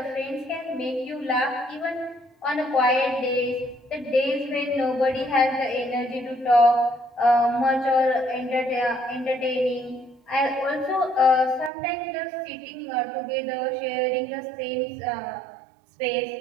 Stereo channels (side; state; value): left; drops out; at 11.7 s